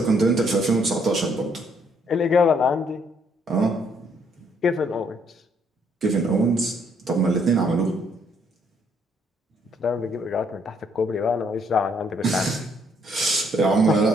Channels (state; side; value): normal; both; correlation 0.68